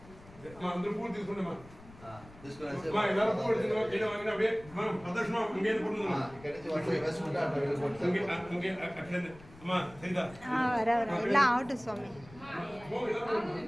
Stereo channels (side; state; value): left; noise; rumble, 21 dB below the sound